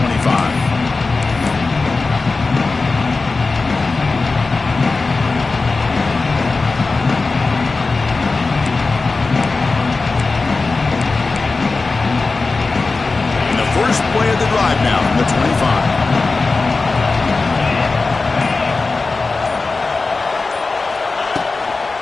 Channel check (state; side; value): quieter; right; 3.8 dB